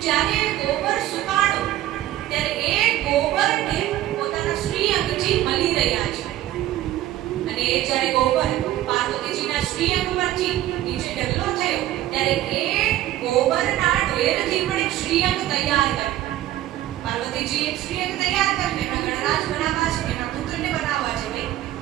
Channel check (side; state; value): left; quieter; 14.0 dB